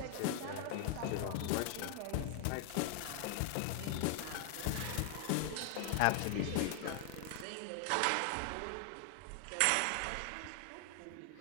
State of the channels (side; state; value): both; different; correlation 0.00